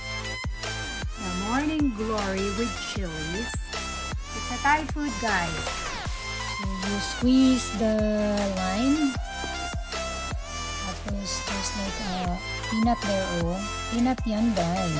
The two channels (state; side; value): identical; both; correlation 1.00